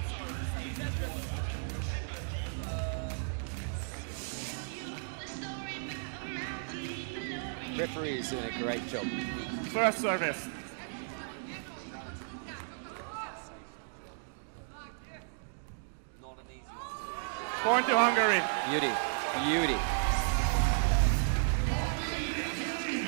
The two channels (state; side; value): silent; left; digital silence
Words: sorry to say, but it was, as the replay will confirm. Yes, it was. Referee is doing a great job. He's doing First a service. fantastic job. Both referees, Alex and Martin, are doing a sensational job. Not an easy one to officiate. Point to Hungary. Beauty. Wow. Beauty. We're approaching what could be yet